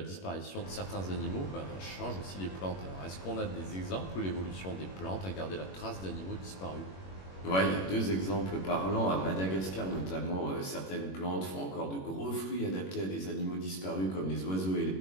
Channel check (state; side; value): late; right; 21 ms